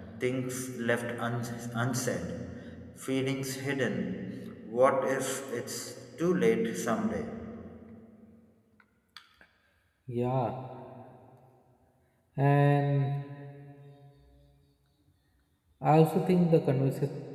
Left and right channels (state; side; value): identical; both; correlation 1.00